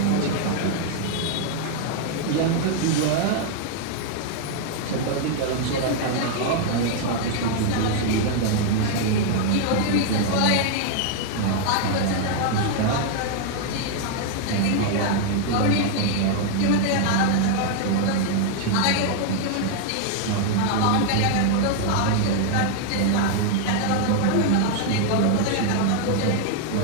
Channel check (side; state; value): both; different; correlation 0.00